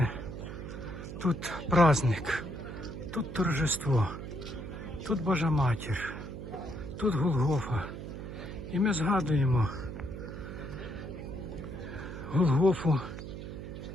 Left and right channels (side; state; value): right; noise; hum, 9 dB below the sound